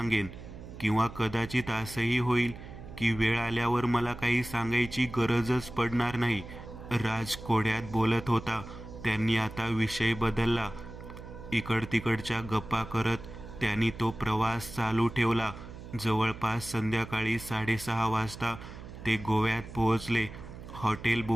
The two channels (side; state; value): right; noise; hum, 13 dB below the sound